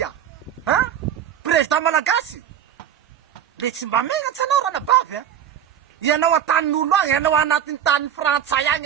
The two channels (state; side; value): quieter; left; 9.7 dB